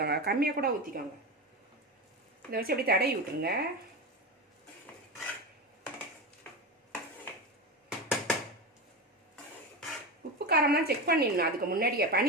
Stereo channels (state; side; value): normal; both; correlation 0.19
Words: கம்மியாக கூட ஊற்றிக்கோங்க. இதை வச்சு அப்படி தடவி விட்டுருங்க. உப்பு காரம்லாம் செக் பண்ணிடணும். அதுக்கு முன்னாடியே